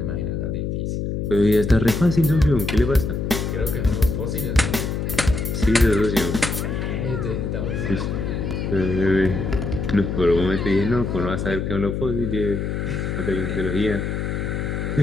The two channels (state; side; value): noise; left; hum, 2 dB below the sound